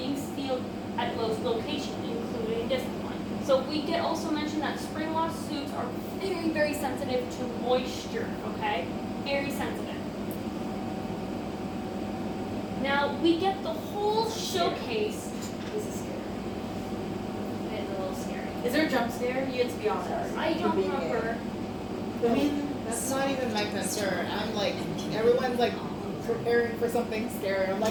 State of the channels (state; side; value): identical; both; correlation 1.00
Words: sealed at most locations, including this one. So we get also mentioned that spring lock suits are very, very sensitive to moisture, okay? Very sensitive. Now, we get the whole showcase. This is scary. It's a little scary. Is there a jump scare? You get to be honest. I don't remember. I mean, that's not even my concern. I'm like, everyone's like preparing for something scary. I'm